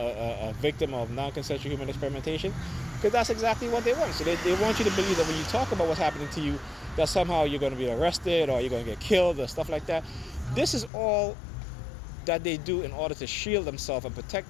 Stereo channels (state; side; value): drops out; right; at 10.9 s